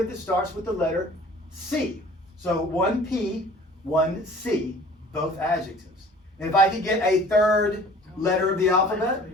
that starts with the letter C. So one P, one C, both adjectives. And if I could get a third letter of the alphabet,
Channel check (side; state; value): both; normal; correlation 0.48